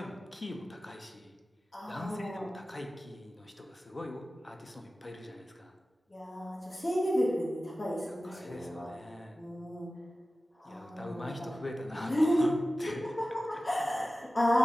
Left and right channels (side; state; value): both; normal; correlation 0.96